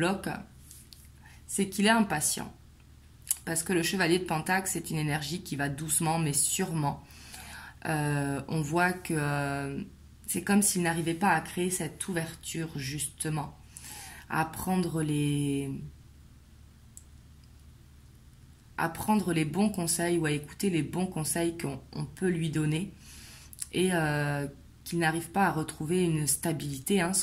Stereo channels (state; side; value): identical; both; correlation 1.00